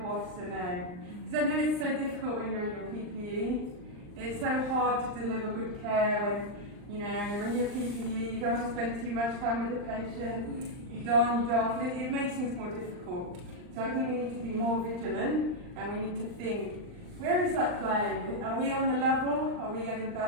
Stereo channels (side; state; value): left; late; 39 ms